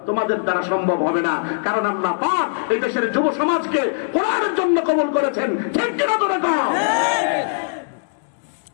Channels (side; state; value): right; silent; digital silence